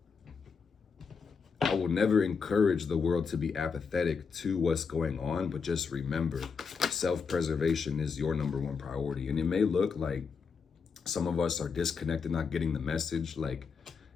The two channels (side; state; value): right; quieter; 5.6 dB